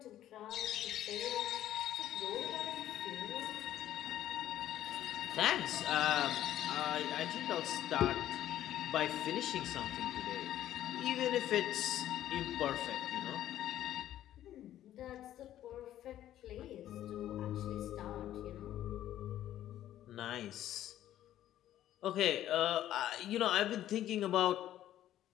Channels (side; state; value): right; quieter; 12.5 dB